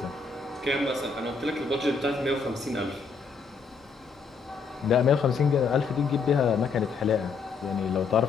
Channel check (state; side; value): quieter; right; 5.0 dB